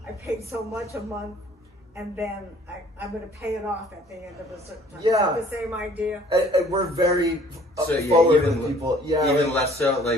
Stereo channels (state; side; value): normal; both; correlation 0.55